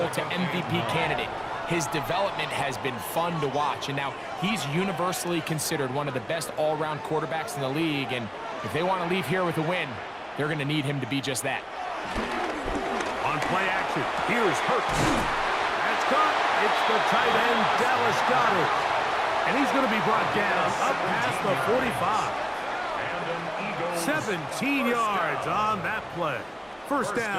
to MVP candidate. His development has been fun to watch, and now he's universally considered one of the best all-around quarterbacks in the league, and if they want to leave here with a win, they're going to need him to be just that. On play action, here's Hurts. That's caught. It's the tight end, Dallas Goedert. And he's going to be brought down up past the 45. 17 yards on that play. First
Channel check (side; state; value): both; identical; correlation 1.00